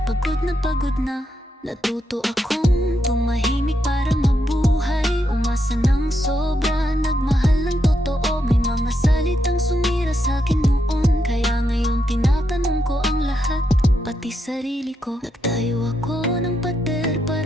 pagod na. Natuto akong tumahimik para mabuhay. Umasa ng sobra, nagmahal ng totoo. May mga salitang sumira sa'kin noon, kaya ngayon tinatanong ko ang lahat, pati sarili ko. Nagtayo ako ng pader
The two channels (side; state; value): both; normal; correlation 0.81